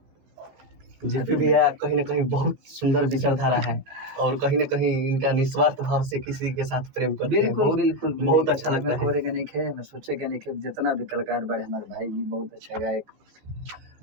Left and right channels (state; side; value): late; left; 15 ms